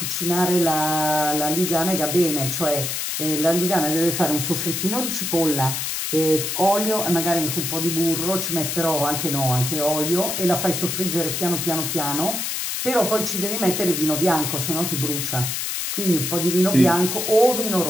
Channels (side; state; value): left; noise; hiss, 2 dB below the sound